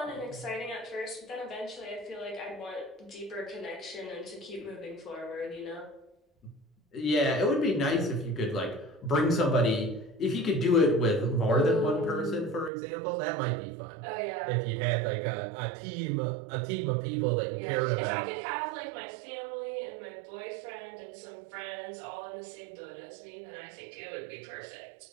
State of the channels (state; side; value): drops out; left; at 12.7 s